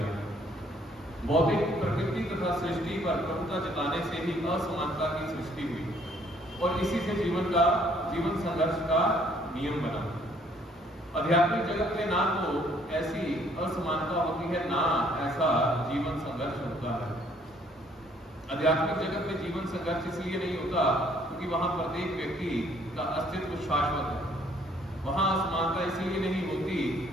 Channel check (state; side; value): normal; both; correlation 0.63